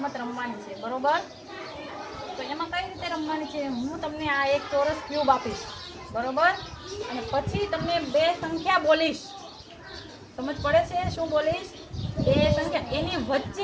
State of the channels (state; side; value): identical; both; correlation 1.00